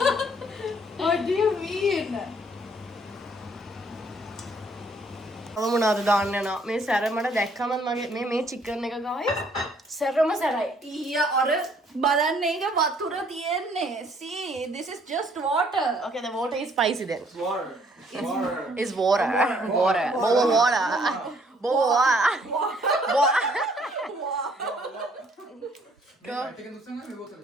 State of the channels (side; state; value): both; normal; correlation 0.63